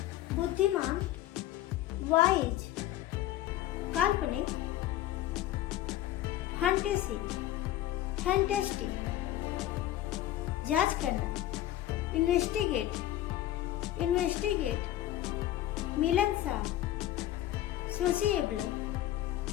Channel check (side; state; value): right; quieter; 13.9 dB